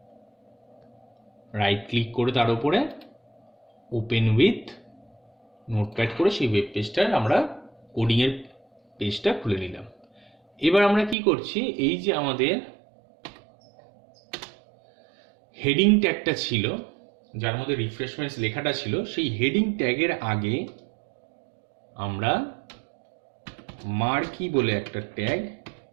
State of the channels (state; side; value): drops out; left; at 11.2 s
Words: রাইট ক্লিক করে তার উপরে ওপেন উইথ নোটপ্যাড করে সেই ওয়েব পেজটার আমরা কোডিংয়ের পেজটা খুলে নিলাম। এবার আমরা কি করছি, এই যে আমাদের হেডিং ট্যাগটা ছিল যার মধ্যে রিফ্রেশমেন্টস লেখাটা ছিল, সেই হেডিং ট্যাগের আগে আমরা মার্কি বলে একটা ট্যাগ